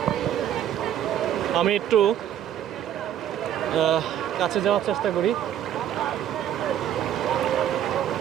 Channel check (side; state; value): left; quieter; 10.5 dB